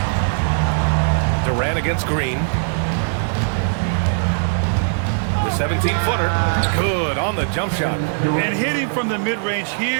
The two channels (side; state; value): left; silent; digital silence